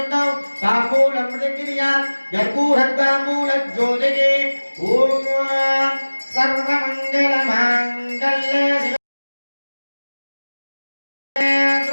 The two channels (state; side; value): inverted; both; correlation -1.00